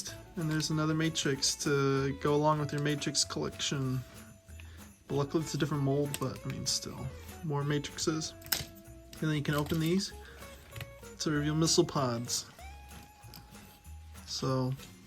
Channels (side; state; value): both; identical; correlation 1.00